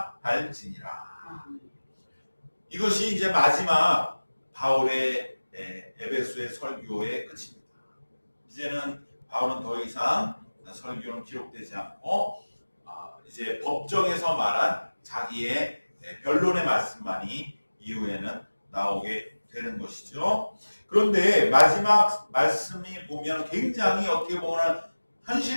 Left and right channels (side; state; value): both; inverted; correlation -1.00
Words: 할지니라. 이것이 이제 마지막 바울의 에베소의 설교의 끝입니다. 이제는 바울은 더 이상 설교는 기록되지 않고 이제 법정에서 말한 자기의 변론의 말씀만이 이후에는 나오게 되는 것이죠. 그런데 마지막 말씀이 보면 굉장히 어떻게 보면